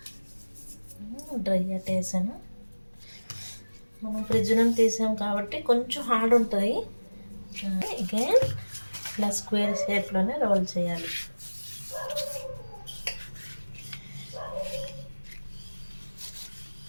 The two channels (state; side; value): inverted; both; correlation -1.00